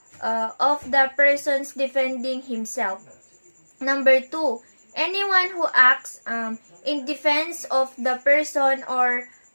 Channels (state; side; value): inverted; both; correlation -1.00